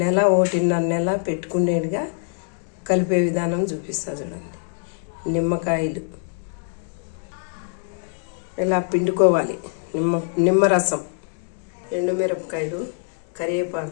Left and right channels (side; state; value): right; silent; digital silence